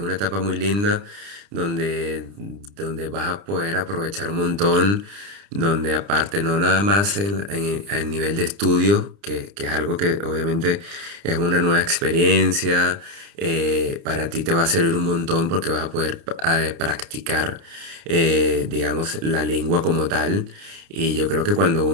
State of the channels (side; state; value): left; late; 30 ms